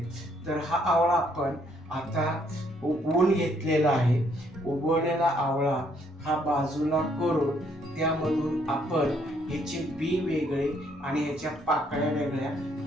तर हा आवळा आपण आता उबवून घेतलेला आहे। उबवलेला आवळा हा बाजूला करून त्यामधून आपण याचे बी वेगळे आणि याच्या पाकळ्या वेगळ्या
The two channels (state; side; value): normal; both; correlation 0.69